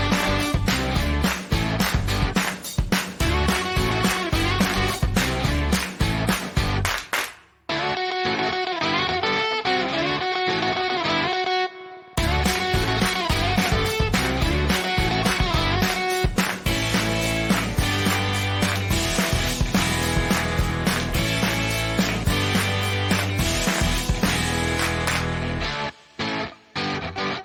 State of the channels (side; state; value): both; identical; correlation 1.00